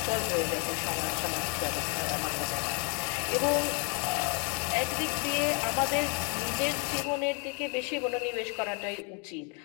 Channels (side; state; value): right; quieter; 36.6 dB